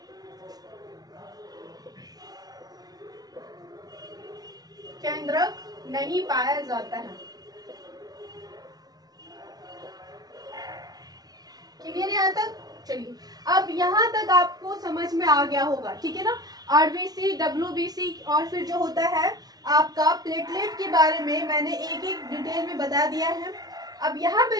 केंद्रक नहीं पाया जाता है, क्लियर है यहाँ तक। चलिए अब यहाँ तक आपको समझ में आ गया होगा, ठीक है ना। आरबीसी, डब्ल्यूबीसी और फिर जो होता है आपका प्लेटलेट के बारे में मैंने एक एक डिटेल में बता दिया है। अब यहाँ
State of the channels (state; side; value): late; left; 0.19 ms